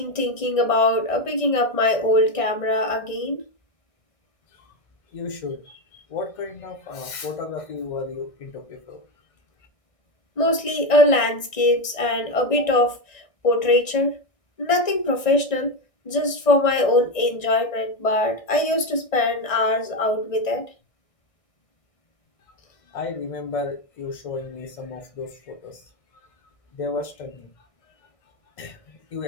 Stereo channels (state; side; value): late; right; 1.9 ms